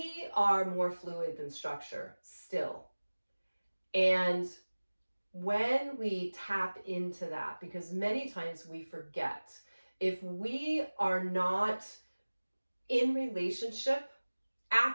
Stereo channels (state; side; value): inverted; both; correlation -1.00